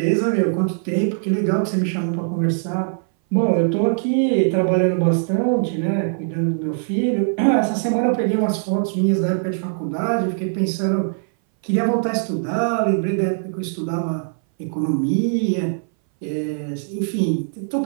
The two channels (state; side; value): silent; left; 61 dB below the other